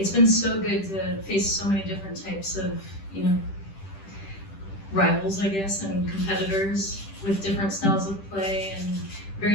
been so good to face so many different types of, rivals, I guess, and competitors with different styles of play and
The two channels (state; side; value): late; right; 10 ms